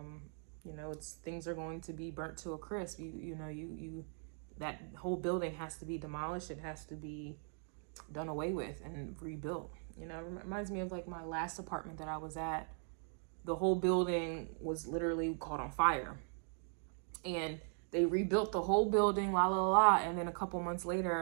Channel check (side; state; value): left; silent; 51 dB below the other